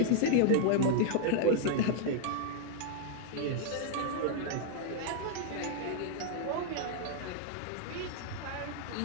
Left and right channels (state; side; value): different; both; correlation 0.00